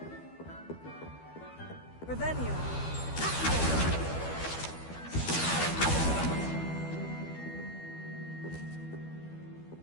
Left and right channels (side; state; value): right; late; 12 ms